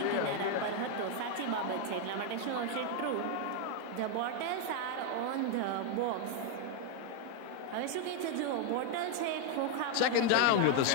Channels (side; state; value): both; different; correlation 0.00